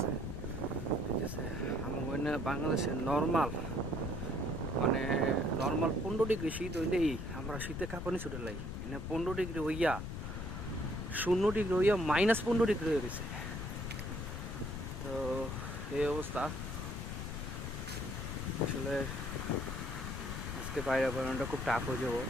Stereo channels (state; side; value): noise; left; rumble, 5 dB below the sound